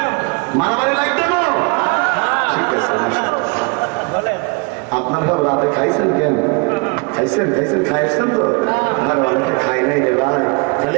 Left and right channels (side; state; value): left; quieter; 30.8 dB